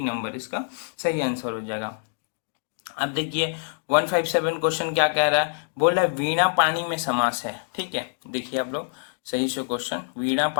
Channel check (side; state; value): right; silent; digital silence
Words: नंबर इसका सही आंसर हो जाएगा। अब देखिए 157 क्वेश्चन क्या कह रहा है, बोल रहा है वीणा पानी में समास है, ठीक है। देखिए आप लोग सही से क्वेश्चन, वीणा